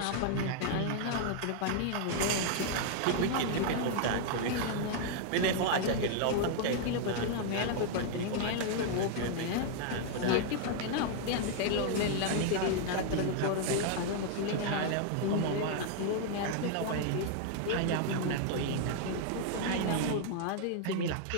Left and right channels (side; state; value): both; different; correlation 0.00